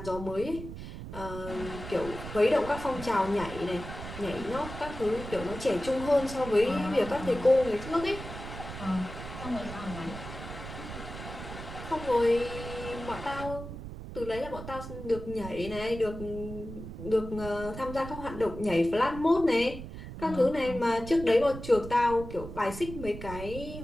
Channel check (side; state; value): right; noise; rumble, 10 dB below the sound